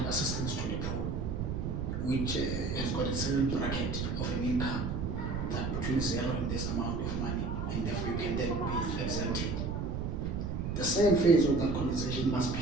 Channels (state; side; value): noise; right; rumble, 2 dB below the sound